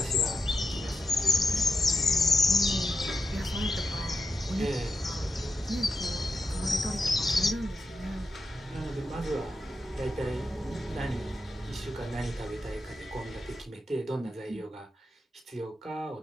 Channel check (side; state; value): both; normal; correlation 0.86